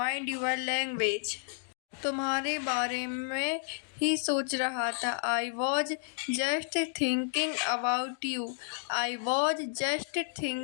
your language. तुम्हारे बारे में ही सोच रहा था। I was just thinking about you. I was just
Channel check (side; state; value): right; silent; digital silence